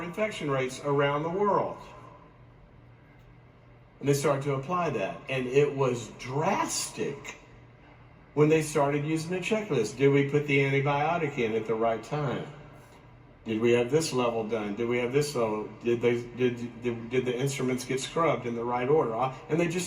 infection rates around the world? And they started to apply that. And it was drastic when they started using the checklist. Did we put the antibiotic in at the right time? Did we have this level done? Did we have this level? Did the instruments get scrubbed in the right order? And they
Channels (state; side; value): identical; both; correlation 1.00